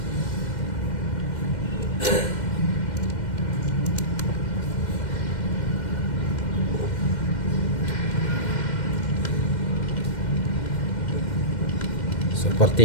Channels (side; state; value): right; late; 2.1 ms